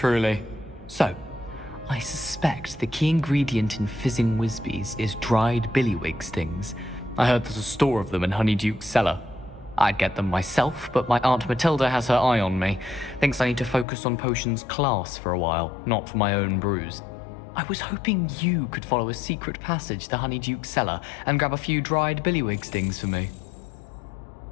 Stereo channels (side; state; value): right; drops out; at 13.9 s